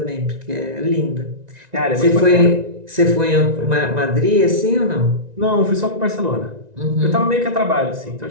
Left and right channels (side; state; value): left; late; 1.9 ms